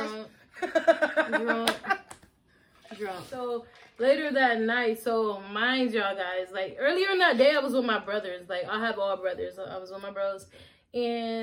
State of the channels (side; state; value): both; identical; correlation 1.00